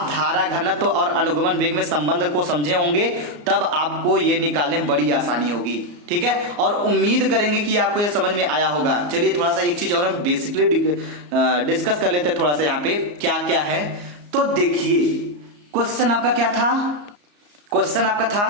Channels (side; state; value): left; late; 34 ms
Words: धारा घनत्व और अनुगमन वेग में संबंध को समझे होंगे, तब आपको ये निकालने में बड़ी आसानी होगी। ठीक है, और उम्मीद करेंगे कि आपको ये समझ में आया होगा। चलिए थोड़ा सा एक चीज और हम बेसिकली डिस्कस कर लेते हैं थोड़ा सा यहाँ पे क्या क्या है। तो देखिए क्वेश्चन आपका क्या था, क्वेश्चन आपका